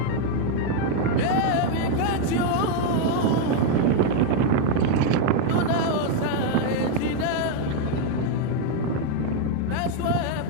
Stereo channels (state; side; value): different; both; correlation 0.01